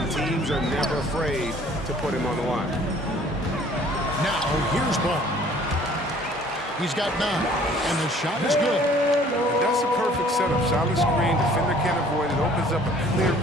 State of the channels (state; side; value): normal; both; correlation 0.54